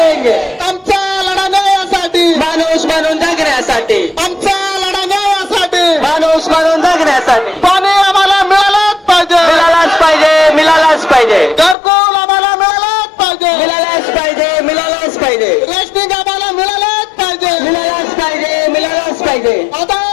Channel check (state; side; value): drops out; right; at 11.8 s